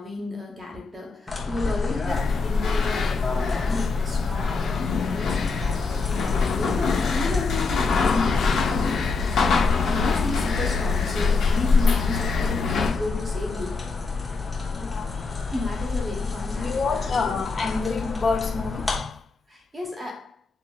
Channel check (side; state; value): right; quieter; 4.1 dB